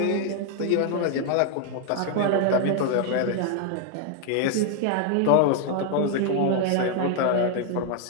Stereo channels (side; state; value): both; different; correlation 0.00